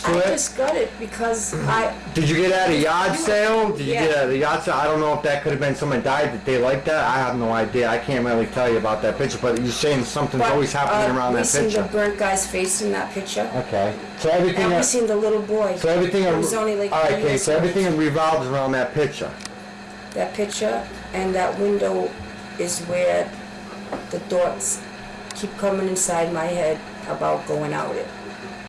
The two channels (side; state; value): both; identical; correlation 1.00